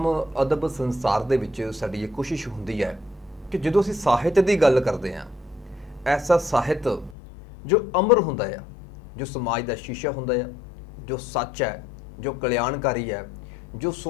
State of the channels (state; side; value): drops out; right; at 7.2 s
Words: ਅਦਬ ਸੰਸਾਰ ਦੇ ਵਿੱਚ ਸਾਡੀ ਇਹ ਕੋਸ਼ਿਸ਼ ਹੁੰਦੀ ਹੈ ਕਿ ਜਦੋਂ ਅਸੀਂ ਸਾਹਿਤ ਦੀ ਗੱਲ ਕਰਦੇ ਹਾਂ, ਐਸਾ ਸਾਹਿਤ ਜੋ ਅਮਰ ਹੁੰਦਾ ਆ, ਜੋ ਸਮਾਜ ਦਾ ਸ਼ੀਸ਼ਾ ਹੁੰਦਾ ਆ, ਜੋ ਸੱਚ ਹੈ, ਜੋ ਕਲਿਆਣਕਾਰੀ ਹੈ, ਜੋ